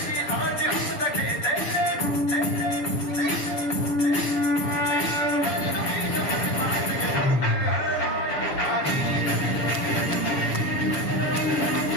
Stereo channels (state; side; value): late; right; 6.8 ms